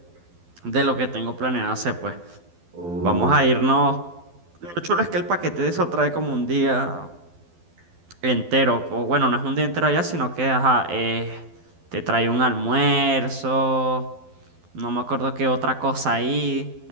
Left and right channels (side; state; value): left; late; 12 ms